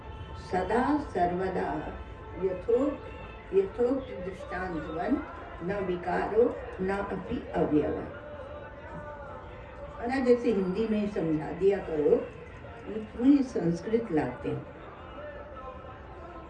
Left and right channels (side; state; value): both; identical; correlation 1.00